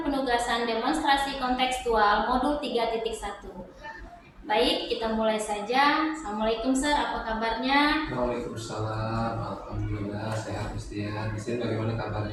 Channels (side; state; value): both; identical; correlation 1.00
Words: penugasan demonstrasi kontekstual modul 3.1. Baik, kita mulai saja. Assalamualaikum Sir, apa kabarnya? Waalaikumsalam. Alhamdulillah sehat Mistian. Mistian bagaimana